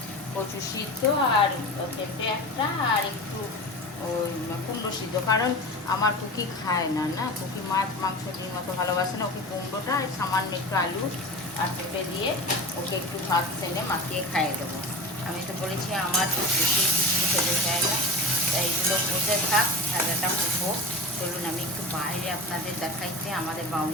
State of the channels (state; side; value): normal; both; correlation 0.31